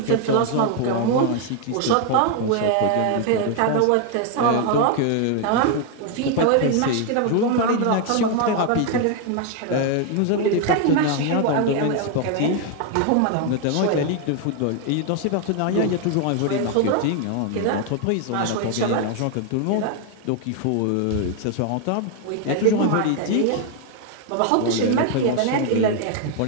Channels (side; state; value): both; different; correlation 0.01